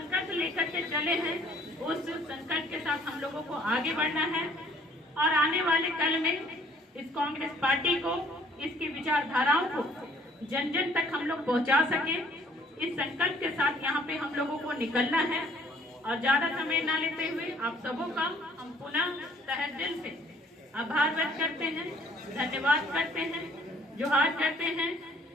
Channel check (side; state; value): both; normal; correlation 0.59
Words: लेकर के चले हैं, उस संकल्प के साथ हम लोगों को आगे बढ़ना है और आने वाले कल में इस कांग्रेस पार्टी को, इसकी विचारधाराओं को जन जन तक हम लोग पहुंचा सके। इस संकल्प के साथ यहाँ पे हम लोगों को निकलना है और ज्यादा समय ना लेते हुए आप सबों का हम पुनः तहे दिल से आभार व्यक्त करते हैं, धन्यवाद करते हैं, जोहार करते हैं